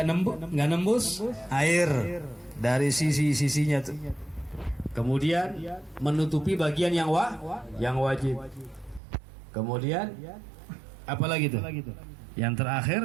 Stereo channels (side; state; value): left; drops out; at 9.0 s